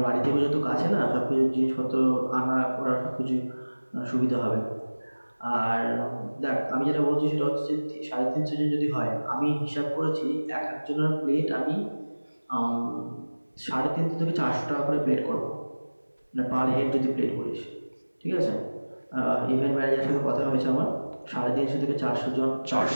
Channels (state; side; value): inverted; both; correlation -1.00